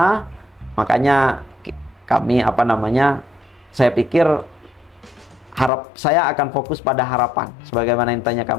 Makanya kami saya pikir saya akan fokus pada harapan sebagaimana yang tanya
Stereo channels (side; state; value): right; drops out; at 5.7 s